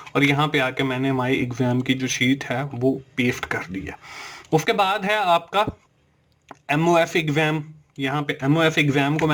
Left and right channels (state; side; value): identical; both; correlation 1.00